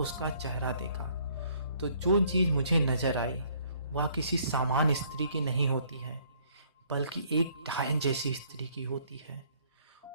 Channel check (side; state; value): both; inverted; correlation -0.63